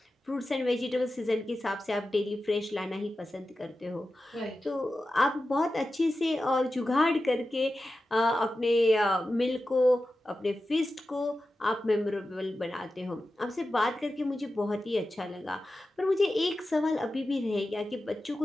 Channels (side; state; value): both; normal; correlation 0.93